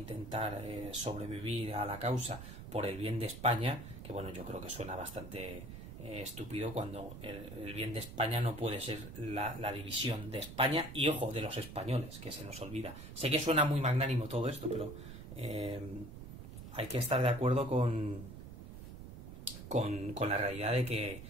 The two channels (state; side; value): noise; right; rumble, 12 dB below the sound